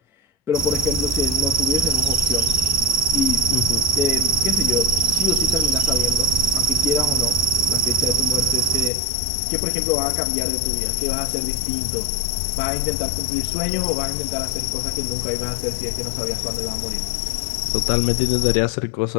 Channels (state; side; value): drops out; right; at 8.9 s